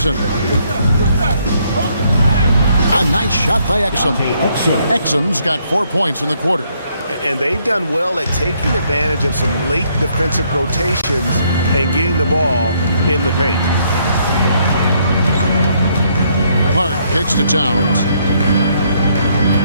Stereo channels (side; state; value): both; inverted; correlation -0.70